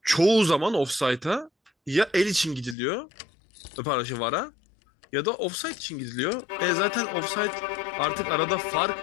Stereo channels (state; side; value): drops out; right; at 2.8 s